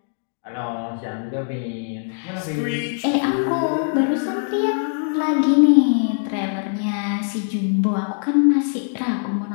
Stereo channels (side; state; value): right; silent; 64 dB below the other